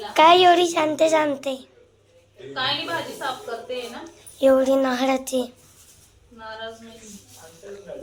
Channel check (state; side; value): identical; both; correlation 1.00